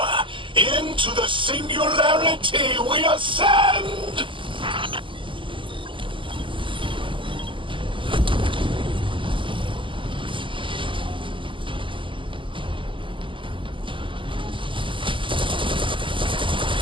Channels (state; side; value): late; left; 0.25 ms